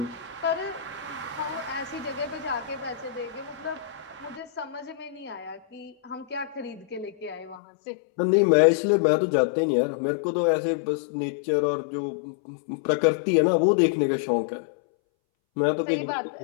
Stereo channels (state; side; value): drops out; right; at 7.6 s